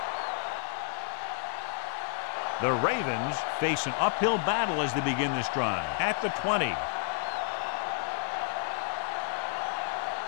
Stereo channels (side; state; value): right; silent; 56 dB below the other